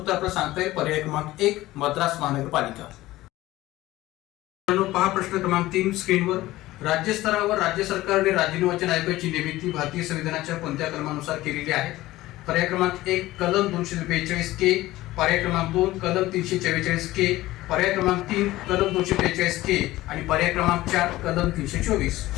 आपल्याला सांगता येईल पर्याय क्रमांक 1 मद्रास महानगरपालिका. पहा प्रश्न क्रमांक 3 स्क्रीनवर. राज्य स्तरावर राज्य सरकारने राज्य निर्वाचन आयोगाची निर्मिती भारतीय संविधानाच्या कोणत्या कलमानुसार केलेली आहे? पर्याय क्रमांक 1 कलम 242 के, पर्याय क्रमांक 2 कलम 344 के, पर्याय क्रमांक 3 कलम 243 के आणि पर्याय क्रमांक 4 कलम 324.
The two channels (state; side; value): quieter; right; 17.0 dB